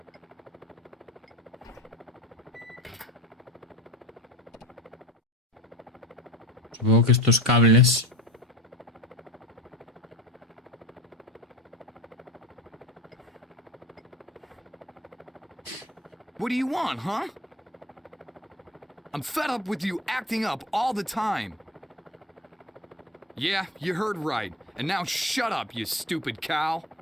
Supongo que estos cables. What do you want, huh? I'm fed up with you acting up all the time. Yeah, you heard right. And now shut up, you stupid cow.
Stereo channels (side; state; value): both; normal; correlation 0.32